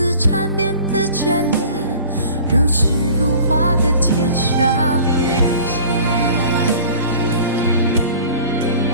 缠绵的眷恋，如诗如画的天上人间。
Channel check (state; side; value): inverted; both; correlation -0.45